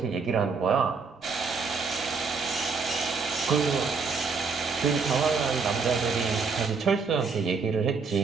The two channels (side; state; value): left; quieter; 5.0 dB